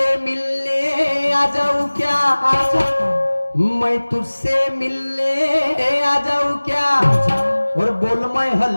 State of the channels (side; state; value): both; inverted; correlation -1.00